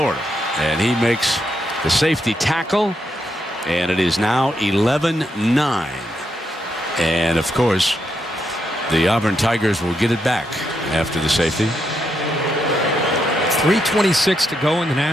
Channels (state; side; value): normal; both; correlation 0.80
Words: And he makes the safety tackle, and it is now 11-9. And, of course, the Auburn Tigers will get it back after the safety. 3:26 to go in the